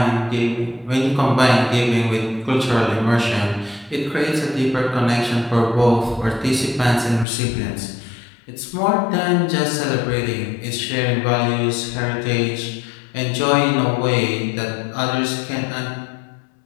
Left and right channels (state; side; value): drops out; right; at 7.2 s